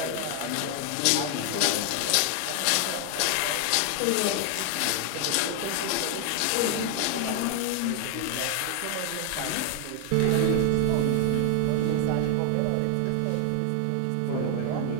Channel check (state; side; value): different; both; correlation 0.00